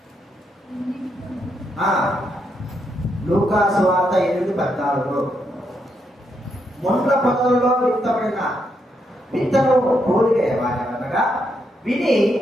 లూకా సువార్త 8:14. ముండ్ల పొదలలో విత్తబడిన విత్తనము పోలిక అనగా విని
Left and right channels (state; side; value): normal; both; correlation 0.79